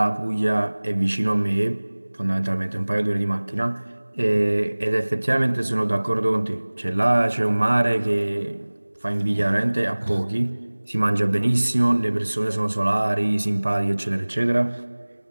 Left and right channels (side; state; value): both; inverted; correlation -1.00